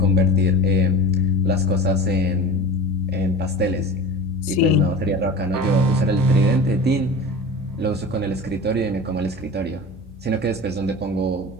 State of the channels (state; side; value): normal; both; correlation 0.34